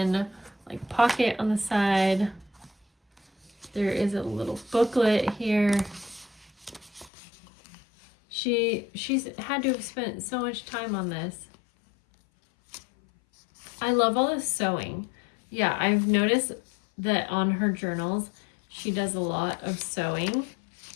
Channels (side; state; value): right; drops out; at 7.1 s